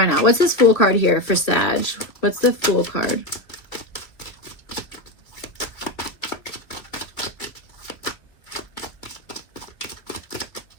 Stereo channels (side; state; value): right; late; 2.6 ms